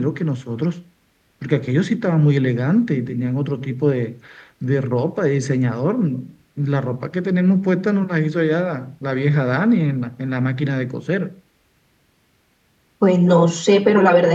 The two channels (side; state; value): both; identical; correlation 1.00